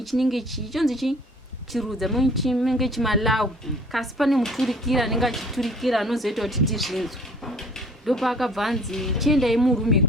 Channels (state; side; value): normal; both; correlation 0.54